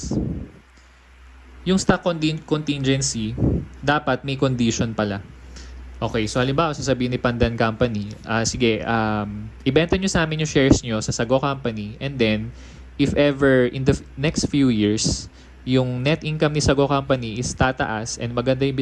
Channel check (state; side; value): identical; both; correlation 1.00